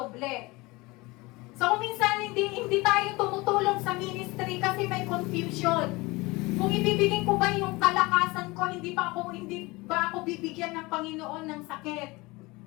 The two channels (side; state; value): right; quieter; 23.1 dB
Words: So kung minsan hindi tayo tumutulong sa ministry kasi may confusion. Kung ibibigay ko ba yung kalakasan ko, hindi ba ako bibigyan ng Panginoon ng sakit?